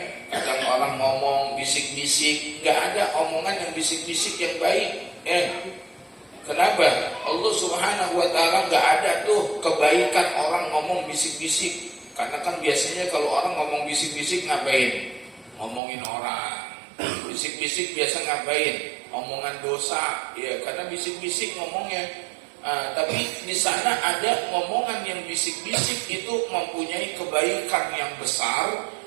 kadang orang ngomong bisik-bisik, gak ada omongan yang bisik-bisik yang baik. Kenapa? Allah Subhanahu wa Ta'ala gak ada tuh kebaikan orang ngomong bisik-bisik. Karena kan biasanya kalau orang ngomong bisik-bisik ngapain? Ngomongin orang. Bisik-bisik biasa ngapain? Omongan dosa. Ya, karena bisik-bisik ngomongnya. Tapi di sana ada ngomongan yang bisik-bisik itu mempunyai kebaikan yang besar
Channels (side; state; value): left; drops out; at 15.8 s